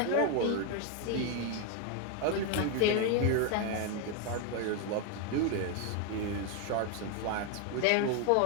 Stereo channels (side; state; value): both; different; correlation 0.01